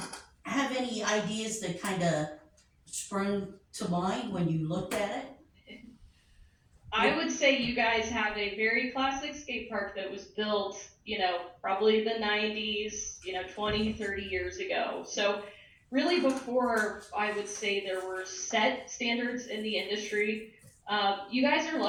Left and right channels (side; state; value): both; identical; correlation 1.00